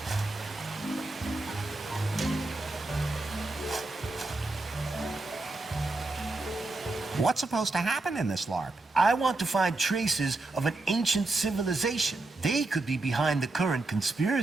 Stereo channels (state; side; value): quieter; left; 3.1 dB